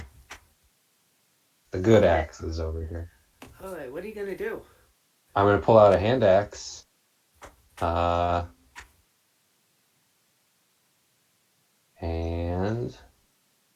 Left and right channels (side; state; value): both; identical; correlation 1.00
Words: The good axe is over here. All right, what are you gonna do? I'm gonna pull out a hand axe. And